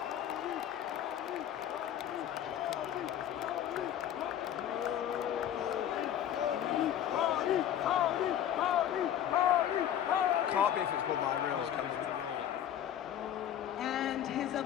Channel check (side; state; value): right; quieter; 10.6 dB